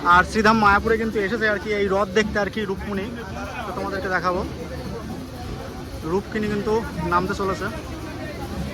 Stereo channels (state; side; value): identical; both; correlation 1.00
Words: আর শ্রীধাম মায়াপুরে কিন্তু এসেছে আর কি এই রথ দেখতে আর কি রূপমণি। তো তোমাদেরকে দেখাবো, রূপকিনী কিন্তু নামতে চলেছে।